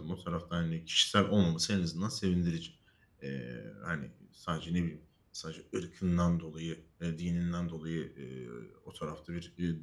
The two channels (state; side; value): identical; both; correlation 1.00